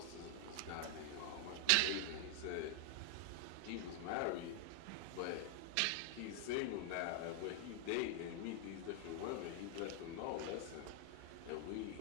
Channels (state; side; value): different; both; correlation 0.00